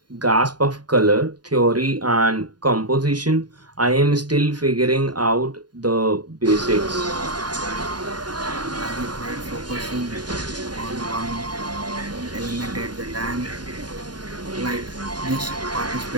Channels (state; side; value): late; left; 0.70 ms